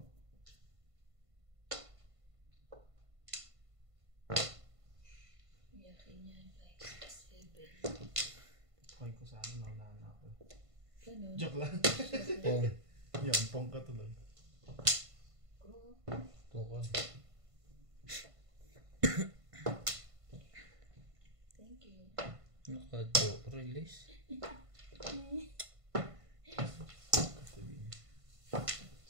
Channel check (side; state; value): left; late; 1.5 ms